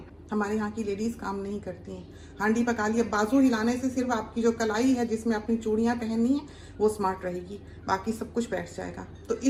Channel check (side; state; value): both; identical; correlation 1.00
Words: हमारे यहाँ की लेडीज काम नहीं करती हैं। हांडी पका लिया, बाजू हिलाने से सिर्फ आपकी जो कलाई है जिसमें अपनी चूड़ियाँ पहननी है वो स्मार्ट रहेगी, बाकी सब कुछ बैठ जाएगा। तो